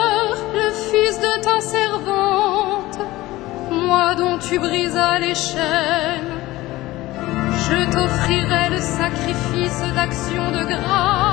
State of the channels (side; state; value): right; quieter; 18.2 dB